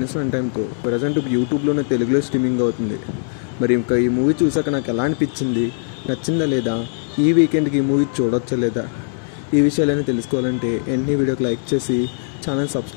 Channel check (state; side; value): silent; right; digital silence